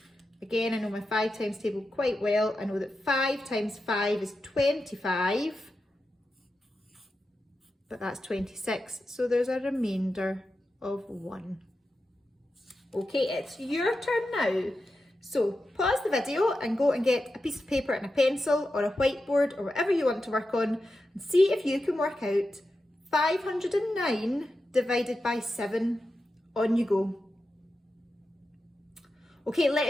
Again, I know my 5 times table quite well. I know that 5 times 5 is 25. But that's 26, so there's a remainder of 1. Okay, it's your turn now. So pause the video and go and get a piece of paper and a pencil or a whiteboard or whatever you want to work on and see if you can work out 509 divided by 7. On you go. Okay,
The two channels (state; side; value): normal; both; correlation 0.90